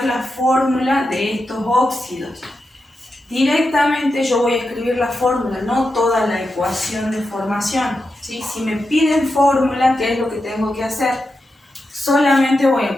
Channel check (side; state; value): both; normal; correlation 0.88